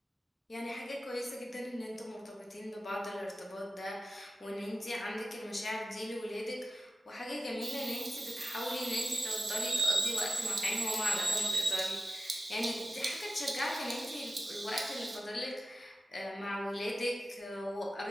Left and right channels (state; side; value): normal; both; correlation 0.93